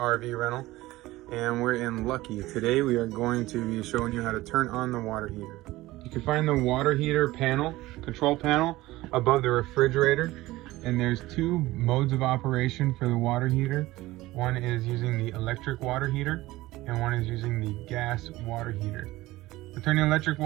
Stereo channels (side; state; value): left; quieter; 18.1 dB